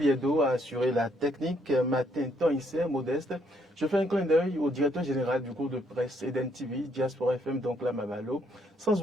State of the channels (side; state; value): both; normal; correlation 0.71